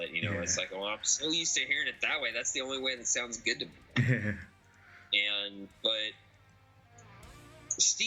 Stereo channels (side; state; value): both; identical; correlation 1.00